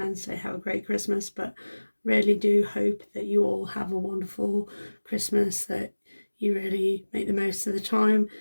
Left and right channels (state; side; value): inverted; both; correlation -1.00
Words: say have a great Christmas, but really do hope that you all have a wonderful Christmas, that you really make the most of the time,